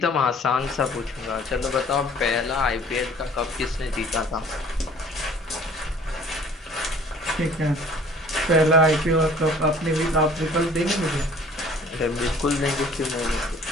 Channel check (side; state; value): both; normal; correlation 0.51